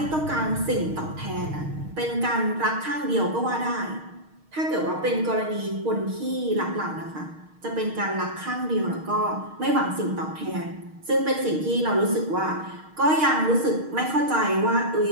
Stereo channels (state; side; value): late; left; 6.4 ms